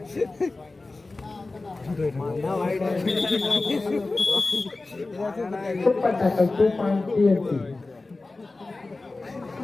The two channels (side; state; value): right; quieter; 3.4 dB